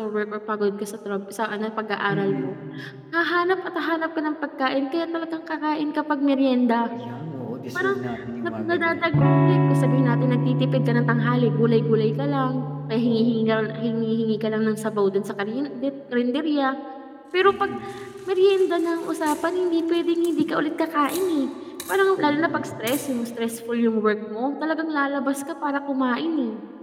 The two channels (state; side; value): identical; both; correlation 1.00